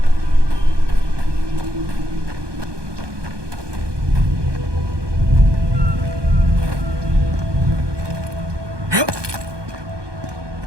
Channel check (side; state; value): left; late; 1.2 ms